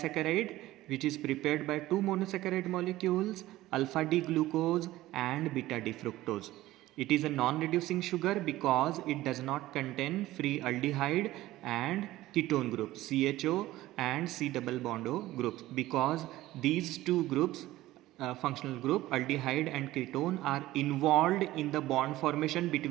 which is prepared by two monosaccharide molecules, alpha D glucose and beta D fructose. It is a non-reducing sugar because it does not contain free aldehyde and ketone groups CHO and C double bond O groups, because these two groups functional group aldehyde and ketone are involved in the bond formation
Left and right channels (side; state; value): left; quieter; 16.3 dB